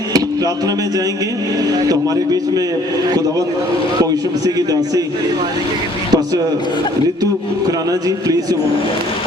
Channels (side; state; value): both; normal; correlation 0.58